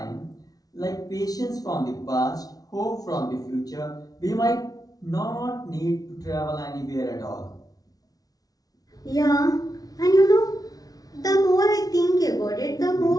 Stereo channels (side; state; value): right; late; 0.18 ms